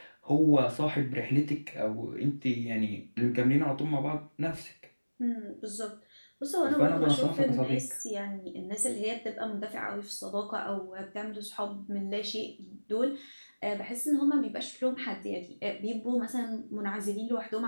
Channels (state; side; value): inverted; both; correlation -1.00